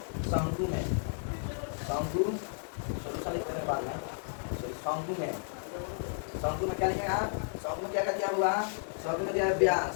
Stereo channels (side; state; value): right; silent; digital silence